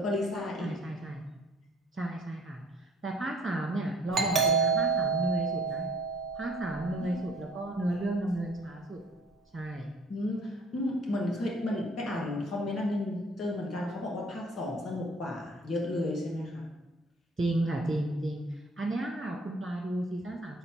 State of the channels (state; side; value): normal; both; correlation 0.55